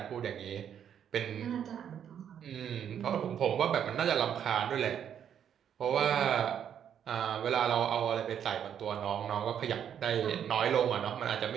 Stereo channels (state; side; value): quieter; left; 8.9 dB